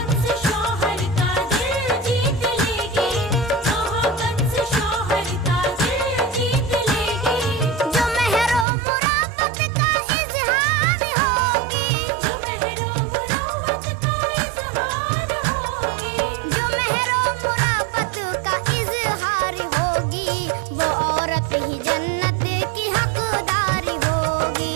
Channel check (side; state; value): left; drops out; at 8.7 s